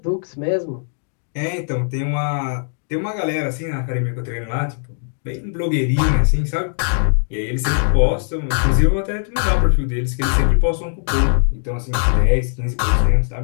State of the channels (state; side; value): silent; right; digital silence